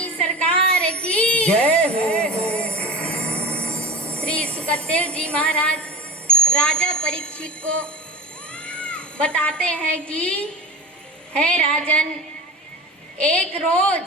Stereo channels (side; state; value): both; normal; correlation 0.31